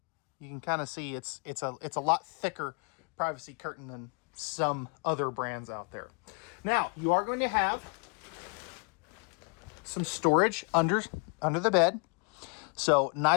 you can kind of see it's a lot thicker privacy curtain than some other brands out there. Now, you are going to have some storage under the bed. So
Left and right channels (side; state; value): right; quieter; 35.1 dB